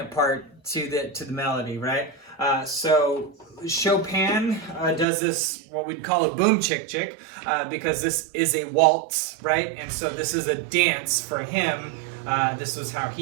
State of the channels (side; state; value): left; drops out; at 5.1 s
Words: part to the melody, right? So Chopin does this, what we'd call a boom chick chick, because this is a waltz, right? And so this is a dance for him. This was how